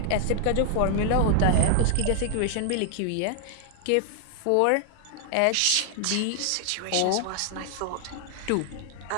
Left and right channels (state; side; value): different; both; correlation 0.00